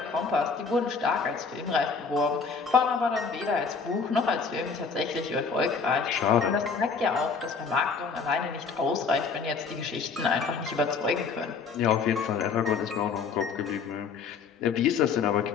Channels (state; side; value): quieter; right; 5.3 dB